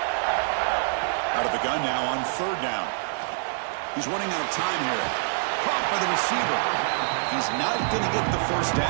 Out of the gun now on 3rd down. He's running out of time here. Caught by the receiver. He's not going to get the first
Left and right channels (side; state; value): left; silent; digital silence